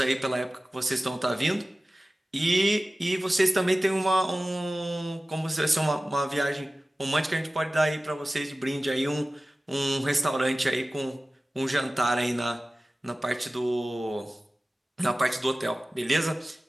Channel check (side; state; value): both; normal; correlation 0.97